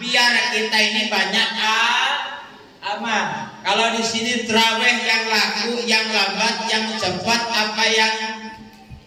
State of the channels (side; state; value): both; identical; correlation 1.00